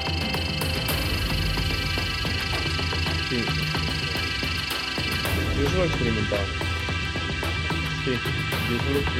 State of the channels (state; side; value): identical; both; correlation 1.00